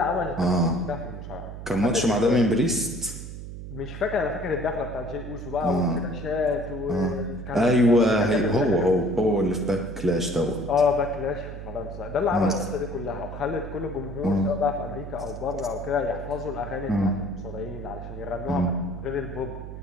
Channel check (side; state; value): right; noise; hum, 10 dB below the sound